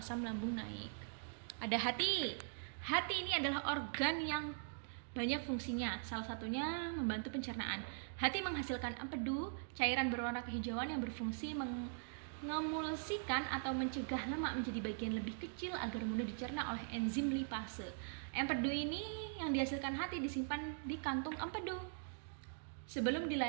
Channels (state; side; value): silent; left; digital silence